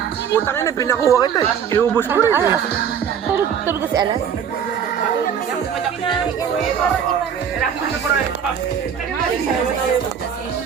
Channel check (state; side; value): quieter; left; 7.9 dB